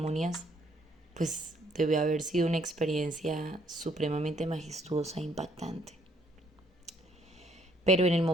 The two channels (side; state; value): both; normal; correlation 0.66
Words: pues debe haber sido una experiencia supremamente majestuosa e impactante. Pero en el